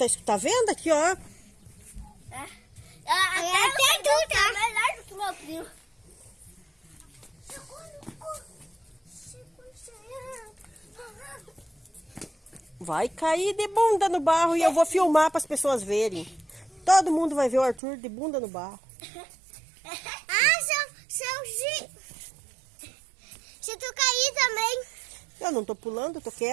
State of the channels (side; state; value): left; drops out; at 17.8 s